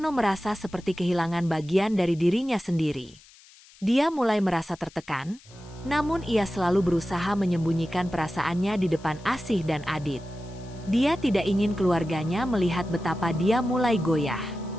merasa seperti kehilangan bagian dari dirinya sendiri. Dia mulai merasa tertekan, namun ia selalu berusaha menyembunyikan perasaannya di depan Asih dan Adit. Dia tidak ingin keluarganya melihat betapa dia mulai goyah.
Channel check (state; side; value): noise; left; hiss, 25 dB below the sound